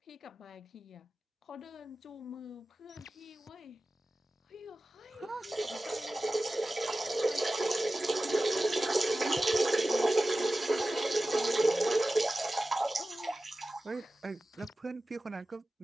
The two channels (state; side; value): normal; both; correlation 0.95